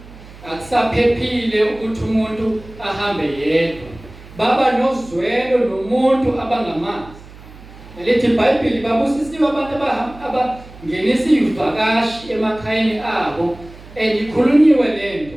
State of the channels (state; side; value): noise; right; hum, 19 dB below the sound